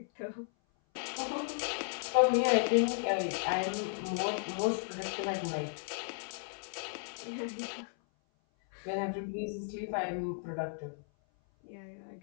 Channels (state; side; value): silent; right; 55 dB below the other